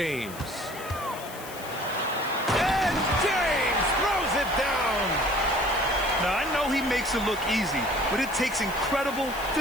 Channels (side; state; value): left; noise; hiss, 15 dB below the sound